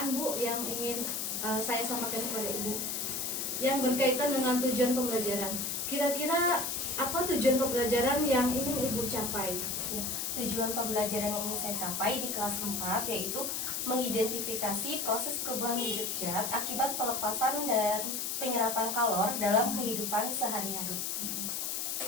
Bu yang ingin saya sampaikan kepada Ibu yang berkaitan dengan tujuan pembelajaran. Kira-kira apa tujuan pembelajaran yang ingin Ibu capai? Ya. Tujuan pembelajaran yang ingin saya capai di kelas 4 yaitu mengidentifikasi proses perubahan wujud zat akibat pelepasan dan penyerapan kalor dalam kehidupan sehari-hari.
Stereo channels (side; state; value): left; noise; hiss, 2 dB below the sound